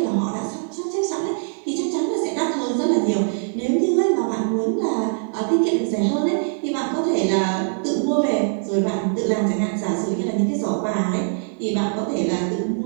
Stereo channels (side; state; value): left; silent; 64 dB below the other